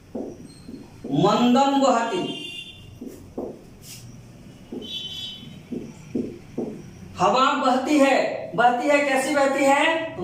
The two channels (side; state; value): both; identical; correlation 1.00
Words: मंदम वहति, हवा बहती है, बहती है कैसी बहती है